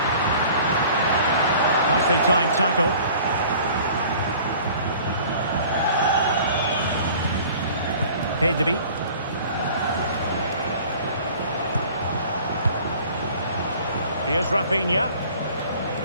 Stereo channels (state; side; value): inverted; both; correlation -0.48